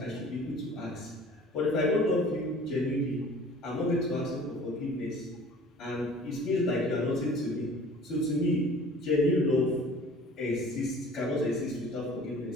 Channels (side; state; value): both; normal; correlation 0.47